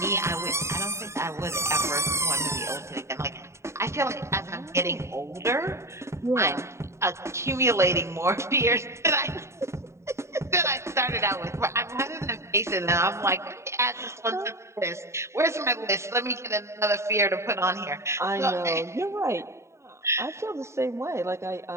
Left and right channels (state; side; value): late; left; 0.13 ms